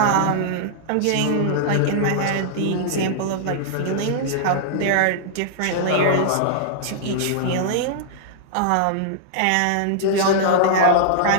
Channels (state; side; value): different; both; correlation -0.01